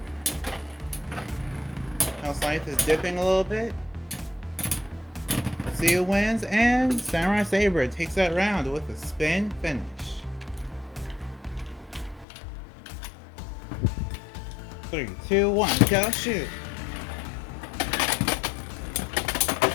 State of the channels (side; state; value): right; drops out; at 12.2 s